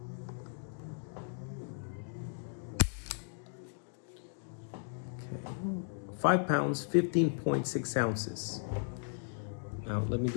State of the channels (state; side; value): silent; right; digital silence